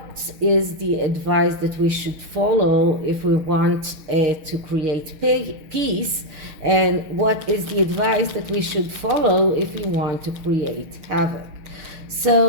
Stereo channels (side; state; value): left; late; 6.4 ms